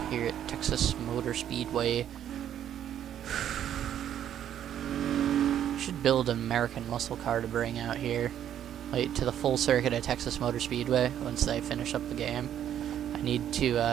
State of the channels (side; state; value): left; quieter; 10.3 dB